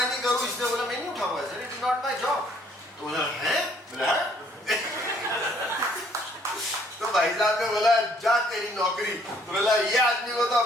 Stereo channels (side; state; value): both; normal; correlation 0.63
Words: नहीं करूं, इसने बोला मैं नहीं उठाऊंगा, sir it is not my job. तो बोला है, बोला तो भाई साहब ने बोला जा तेरी नौकरी। तो बोला ये आदमी को तो